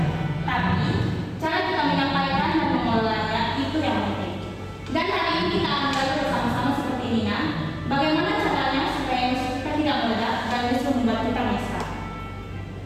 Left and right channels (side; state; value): both; identical; correlation 1.00